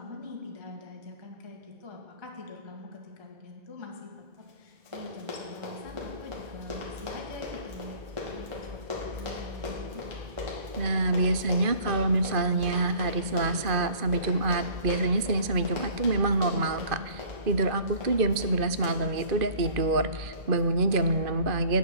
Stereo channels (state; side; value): late; left; 2.4 ms